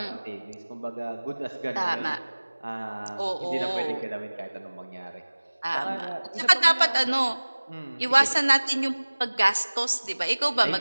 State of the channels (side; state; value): both; inverted; correlation -1.00